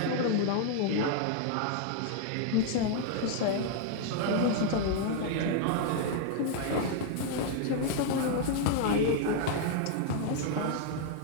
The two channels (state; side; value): different; both; correlation 0.00